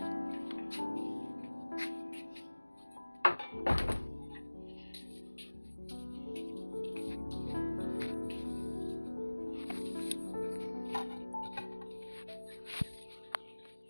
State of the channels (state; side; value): inverted; both; correlation -1.00